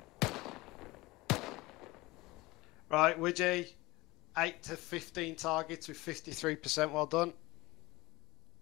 Right, Widgie, 8 to 15 targets with 53%. Well done.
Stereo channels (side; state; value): right; quieter; 21.1 dB